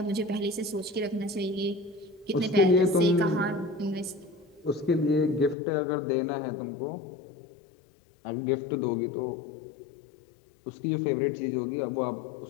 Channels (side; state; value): right; drops out; at 5.6 s